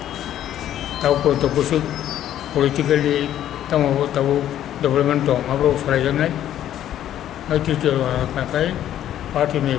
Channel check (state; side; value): quieter; right; 11.5 dB